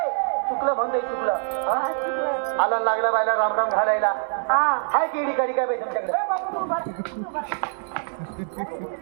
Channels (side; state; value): left; silent; digital silence